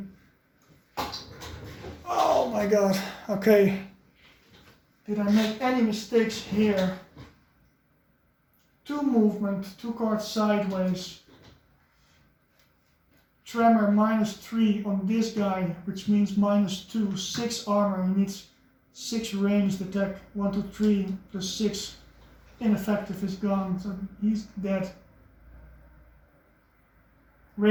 Oh my god. Okay. Did I make any mistakes here? 2 movement, 2 cards sideways. Tremor -3 on this guy, which means -2, 6 armor. He needs 6 ranged attack. 1, 2, 3 plus 6. Ineffective is gone, so he's dead.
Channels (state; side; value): identical; both; correlation 1.00